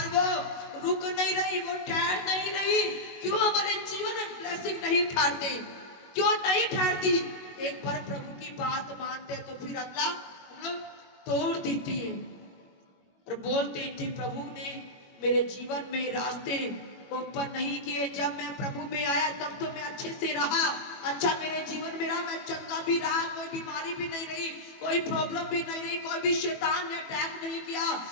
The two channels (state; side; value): late; right; 22 ms